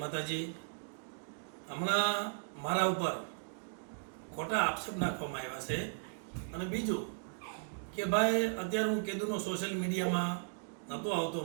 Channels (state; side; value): silent; left; digital silence